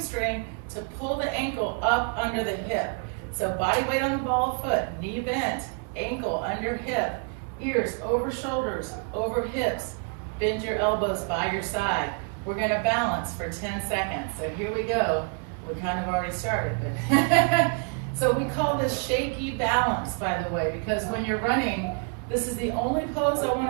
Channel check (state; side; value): quieter; left; 39.5 dB